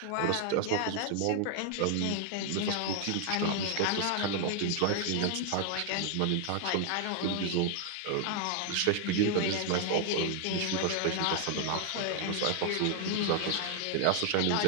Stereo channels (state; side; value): different; both; correlation 0.00